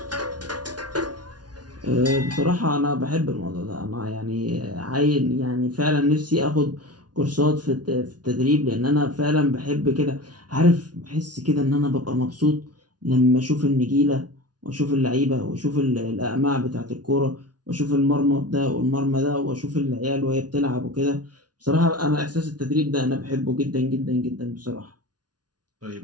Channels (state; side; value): late; left; 0.69 ms